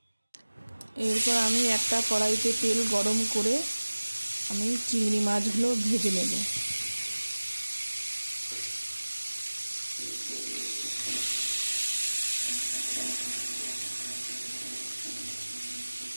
এরপর আমি একটা কড়াইতে তেল গরম করে আমি চিংড়ি মাছগুলো ভেজে নেব।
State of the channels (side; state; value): both; inverted; correlation -1.00